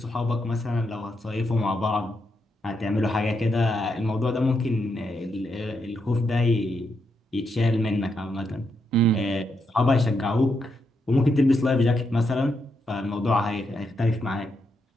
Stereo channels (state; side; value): normal; both; correlation 0.81